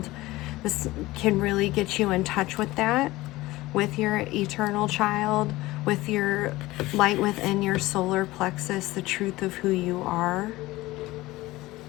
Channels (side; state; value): right; quieter; 18.8 dB